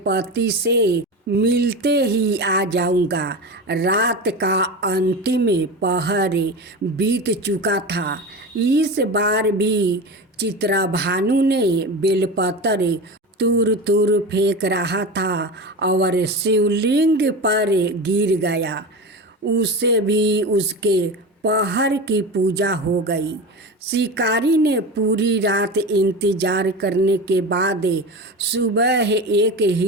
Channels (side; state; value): both; normal; correlation 0.26